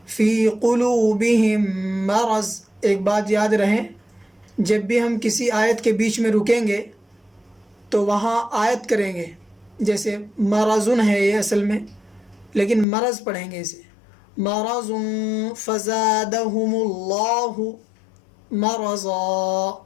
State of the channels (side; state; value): right; drops out; at 12.9 s